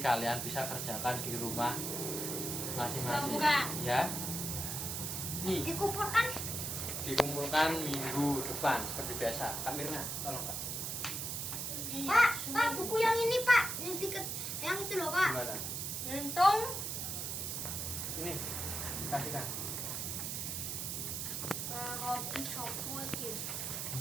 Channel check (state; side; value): noise; right; hiss, 3 dB below the sound